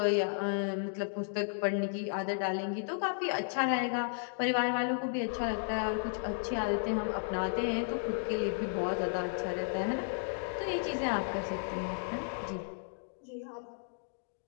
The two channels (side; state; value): right; silent; digital silence